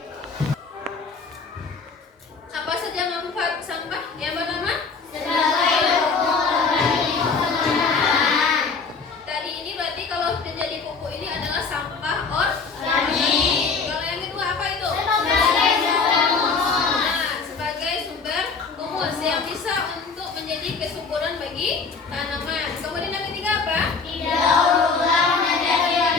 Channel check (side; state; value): right; quieter; 4.8 dB